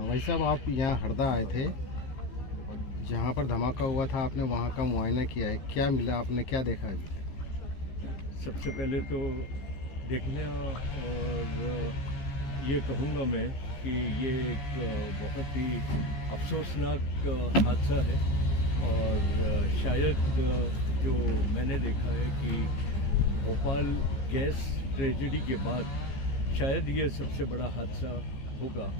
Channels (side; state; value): right; late; 15 ms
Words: भाई साहब, आप यहाँ हरदा आए थे, जहाँ पर धमाका हुआ था, आपने वहाँ का मुआयना किया है, क्या मिला, आपने क्या देखा अभी तक? सबसे पहले तो देखने और ये कहूँगा मैं कि ये एक बहुत ही अफसोसनाक हादसा है और शायद जो मैंने देखा है कि भोपाल गैस ट्रेजेडी के बाद शायद ये सबसे बड़ा हादसा होगा